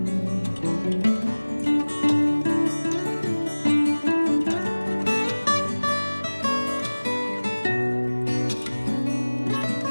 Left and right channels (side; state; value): both; inverted; correlation -1.00